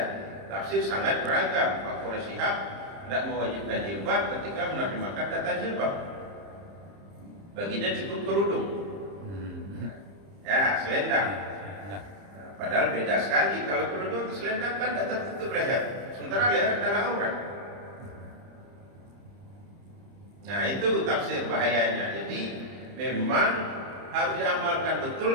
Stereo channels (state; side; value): late; left; 30 ms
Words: Tafsir sangat beragam. Pak Quraisy Shihab tidak mewajibkan jilbab ketika menerjemahkan kata jilbab. Baginya cukup kerudung. Ya, selendang. Nah, Padahal beda sekali. Kalau kerudung selendang kan tidak tertutup leher. Sementara leher adalah aurat. Nah, itu tafsir bahayanya. Jadi memang harus diamalkan